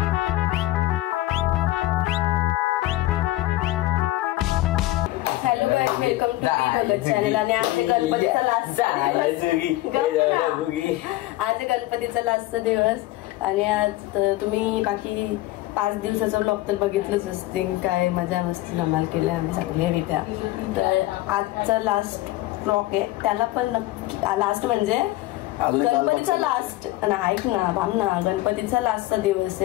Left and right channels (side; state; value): right; quieter; 17.2 dB